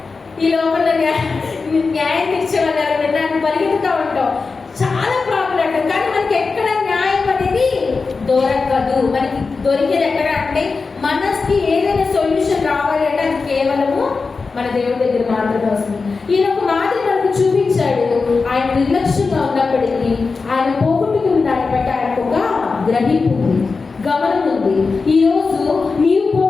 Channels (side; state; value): right; quieter; 4.4 dB